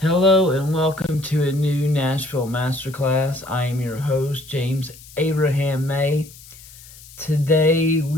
Hello and welcome to a new Nashville Masterclass. I am your host, James Abraham May. Today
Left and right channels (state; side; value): noise; left; hiss, 20 dB below the sound